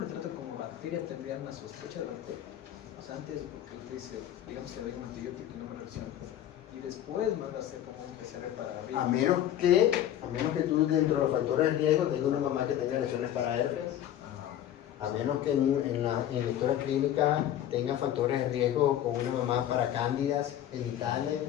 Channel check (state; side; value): quieter; right; 11.5 dB